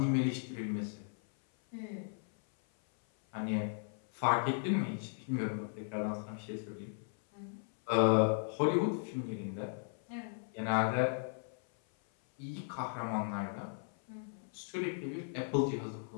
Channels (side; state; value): right; silent; 54 dB below the other